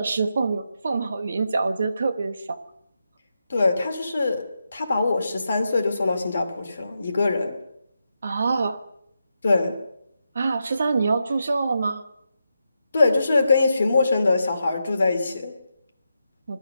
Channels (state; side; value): inverted; both; correlation -0.85